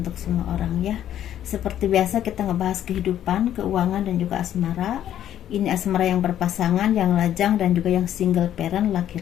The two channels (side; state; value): right; quieter; 11.1 dB